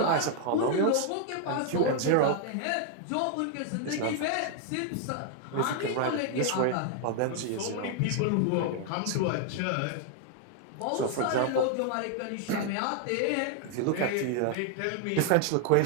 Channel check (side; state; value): both; different; correlation 0.00